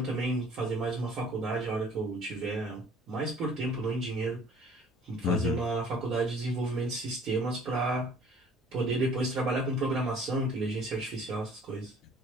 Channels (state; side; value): normal; both; correlation 0.53